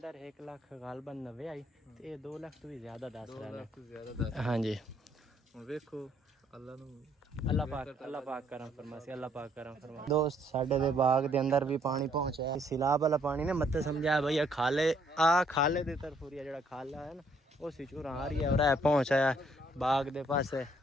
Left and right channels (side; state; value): both; normal; correlation 0.67